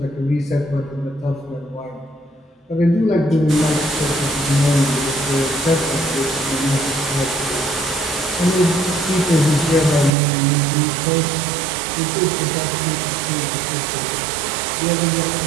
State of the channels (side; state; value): left; drops out; at 10.1 s